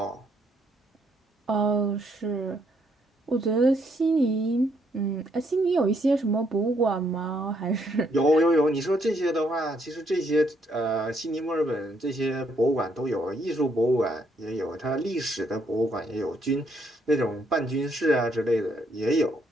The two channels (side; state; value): both; normal; correlation 0.72